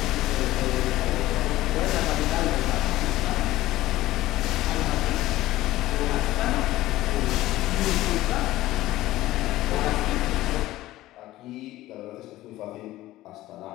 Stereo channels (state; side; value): quieter; right; 16.2 dB